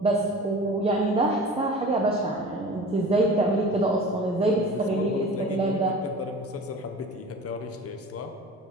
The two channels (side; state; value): both; normal; correlation 0.39